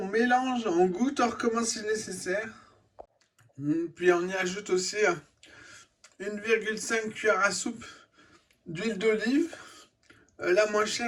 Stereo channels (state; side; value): identical; both; correlation 1.00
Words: mélange, on goûte, on recommence si nécessaire. Puis on y ajoute aussi 1,5 cuillère à soupe d'huile d'olive. La moins